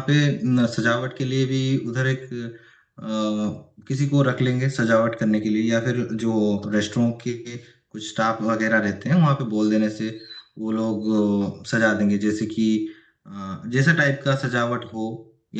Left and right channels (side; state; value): both; identical; correlation 1.00